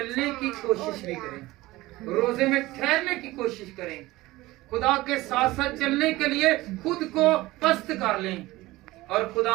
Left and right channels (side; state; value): left; quieter; 18.9 dB